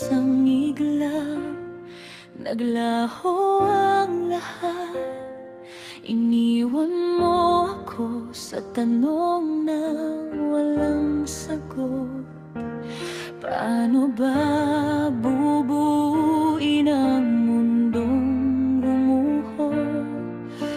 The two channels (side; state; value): both; identical; correlation 1.00